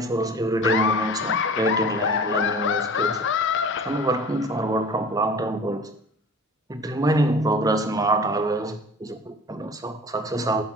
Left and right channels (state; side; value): normal; both; correlation 0.41